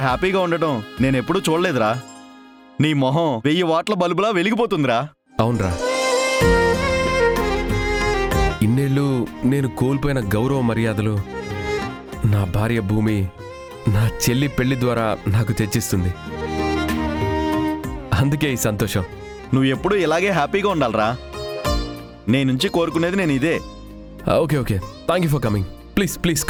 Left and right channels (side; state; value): both; identical; correlation 1.00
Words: హ్యాపీగా ఉండటం నేను ఎప్పుడూ చూడలేదురా. నీ మొహం 1000 వాట్ల బల్బులా వెలిగిపోతుందిరా. అవునరా, ఇన్నేళ్ళు నేను కోల్పోయిన గౌరవ మర్యాదలు నా భార్య భూమి నా చెల్లి పెళ్లి ద్వారా నాకు తెచ్చిస్తుంది. అందుకే ఈ సంతోషం. నువ్వు ఎప్పుడూ ఇలాగే హ్యాపీగా ఉండాలిరా. నీ నుంచి కోరుకునేది నేను ఇదే. Okay okay, thank you for coming. Please please